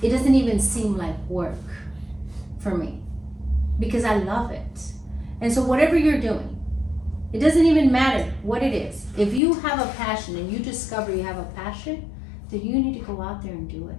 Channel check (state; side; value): drops out; right; at 9.4 s